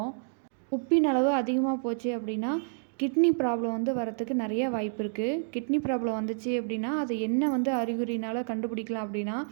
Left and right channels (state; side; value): silent; left; digital silence